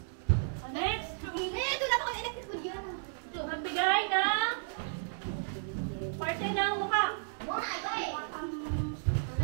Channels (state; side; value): silent; left; digital silence